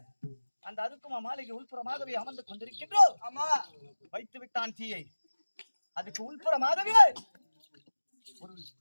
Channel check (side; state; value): both; inverted; correlation -1.00